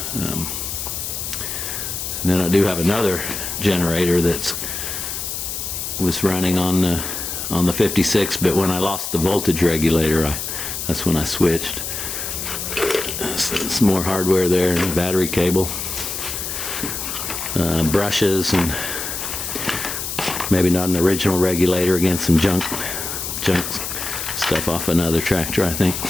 And then I do have another generator that was running on the 56, but when I lost the voltage regulator, that's when I switched. Some more hardware there, battery cable, brushes, and maybe not an original regulator. Again, some junk stuff off another tractor, I think.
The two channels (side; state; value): left; noise; hiss, 5 dB below the sound